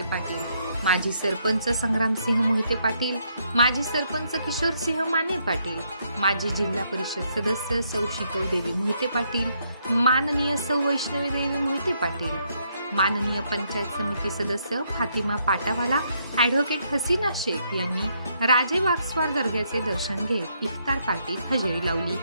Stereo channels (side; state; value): both; inverted; correlation -0.74